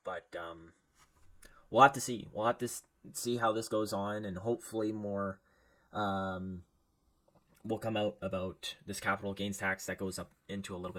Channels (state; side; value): identical; both; correlation 1.00